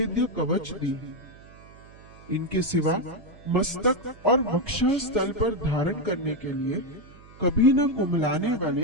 कवच दी। इनके सिवा मस्तक और वक्षस्थल पर धारण करने के लिए कभी न कुमलाने वाले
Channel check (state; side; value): noise; right; hum, 22 dB below the sound